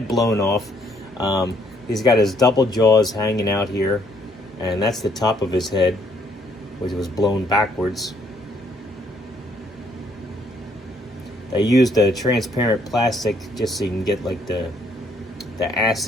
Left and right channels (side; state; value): both; normal; correlation 0.67